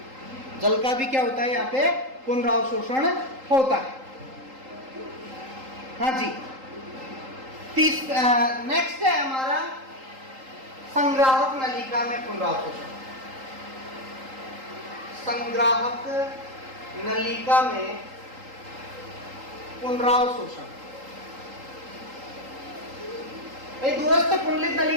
जल का भी क्या होता है, यहाँ पे पुनरावशोषण होता है। हाँ जी, नेक्स्ट है हमारा संग्राहक नलिका में पुनरावशोषण। संग्राहक नलिका में पुनरावशोषण, दूरस्थ कुंडलित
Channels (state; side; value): late; left; 3.8 ms